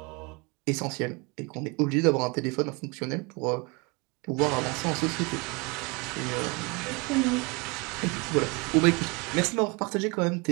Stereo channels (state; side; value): quieter; left; 28.6 dB